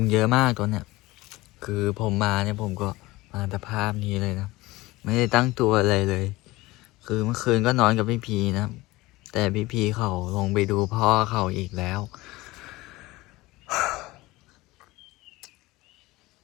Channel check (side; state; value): right; quieter; 19.9 dB